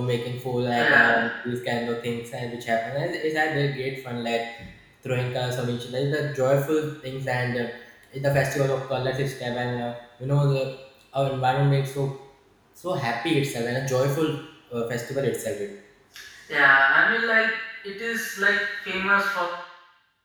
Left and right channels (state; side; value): identical; both; correlation 1.00